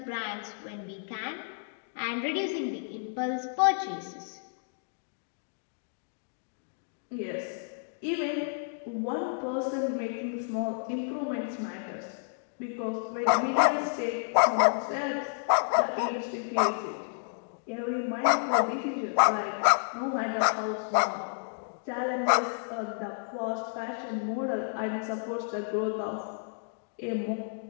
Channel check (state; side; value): silent; right; digital silence